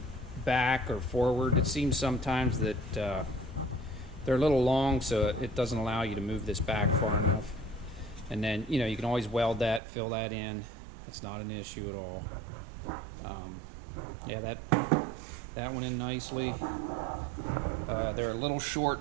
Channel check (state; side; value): drops out; left; at 9.8 s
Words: back or forward. It seems sometimes that they're a little long, so it doesn't allow you to move this back far enough. And then, you know, you can always weld that, fill that in. It's not an issue at all. Yeah, that went in nicely. They're a little